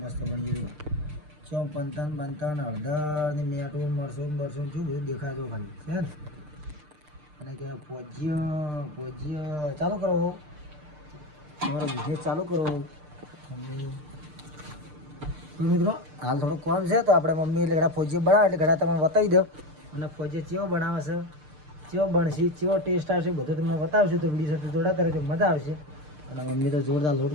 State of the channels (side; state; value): left; late; 6.7 ms